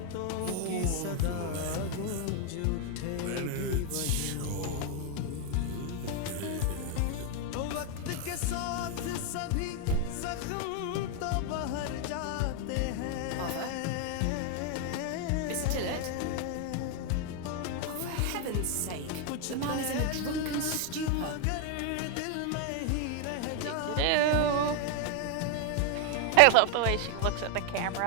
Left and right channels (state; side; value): different; both; correlation 0.01